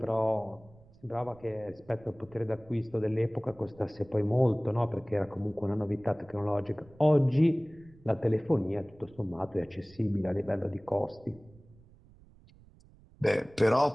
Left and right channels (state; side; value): noise; right; rumble, 25 dB below the sound